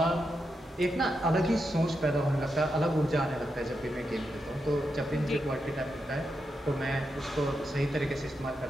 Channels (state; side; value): normal; both; correlation 0.85